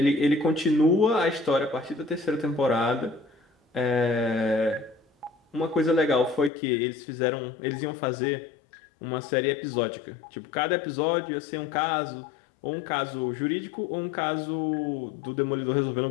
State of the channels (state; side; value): drops out; right; at 6.5 s